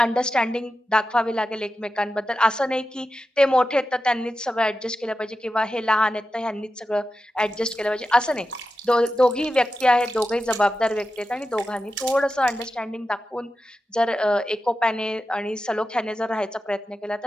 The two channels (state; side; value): normal; both; correlation 0.91